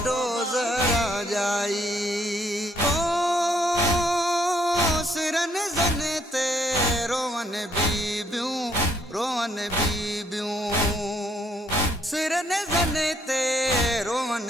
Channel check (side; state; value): both; normal; correlation 0.69